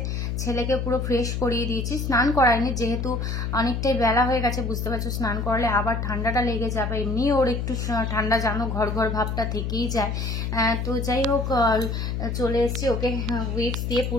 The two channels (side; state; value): left; noise; hum, 2 dB below the sound